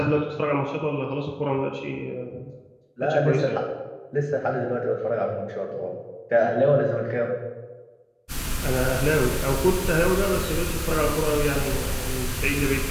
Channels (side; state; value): both; identical; correlation 1.00